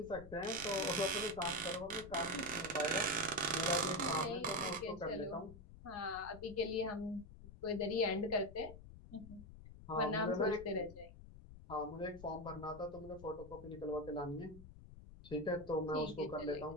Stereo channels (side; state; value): left; noise; rumble, 16 dB below the sound